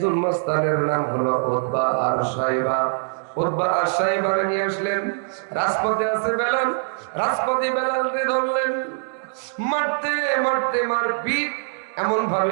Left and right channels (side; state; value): left; silent; digital silence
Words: মাস্তানের নাম হলো উতবা আর সাইবা। উতবা আর সাইবারে নিয়ে আসলেন, রাজপথে আছে বেলাল, রাজপথে বেলালকে ধরলেন, মারতে মারতে মারপিট এমন